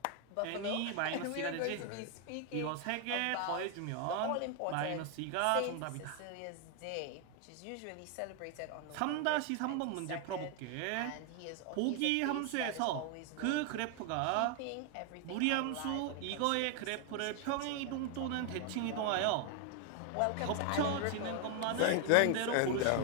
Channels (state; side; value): different; both; correlation 0.01